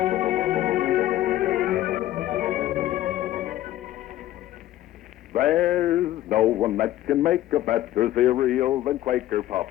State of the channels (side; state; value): right; quieter; 14.1 dB